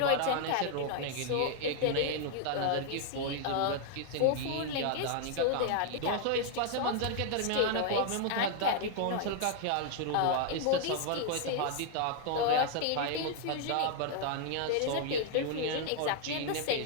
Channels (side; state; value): both; different; correlation 0.00